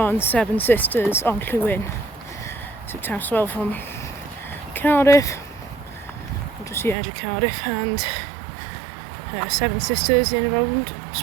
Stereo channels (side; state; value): left; drops out; at 7.0 s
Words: Seven Sisters Onllwyn. So Taffs from Cardiff, just the edge of Cardiff, and Seven Sisters in around